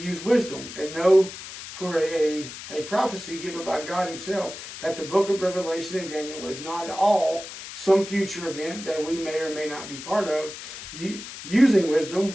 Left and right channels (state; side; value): noise; left; hiss, 11 dB below the sound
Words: wisdom and know for a prophecy given by God himself that the book of Revelation and Daniel is not all some future event that we may or may not be part of. Using